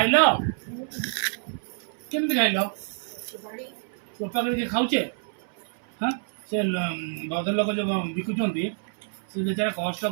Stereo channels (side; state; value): left; silent; 60 dB below the other